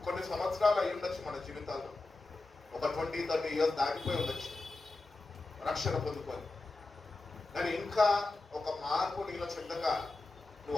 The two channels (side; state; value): right; quieter; 3.3 dB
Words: కొన్ని సంవత్సరాలు అయి ఉండొచ్చు, మన జీవితాల్లో ఒక 20-30 years దాటిపోయి ఉండొచ్చు రక్షణ పొందుకొని. కానీ ఇంకా ఒక మార్పు నీలో చెందక